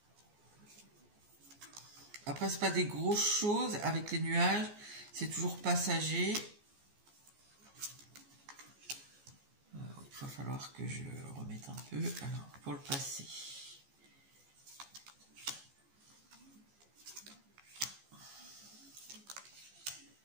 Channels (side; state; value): left; late; 14 ms